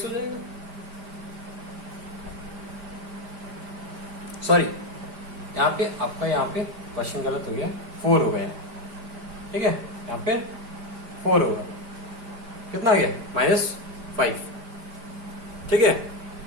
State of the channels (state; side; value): late; left; 4.9 ms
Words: हो जाएगा। सॉरी, यहाँ पे आपका यहाँ पे क्वेश्चन गलत हो गया, 4 हो गया। ठीक है, यहाँ पे 4 होगा, कितना आ गया -5। ठीक है,